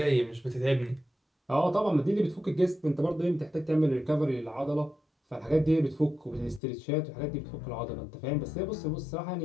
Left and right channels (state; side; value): drops out; right; at 6.6 s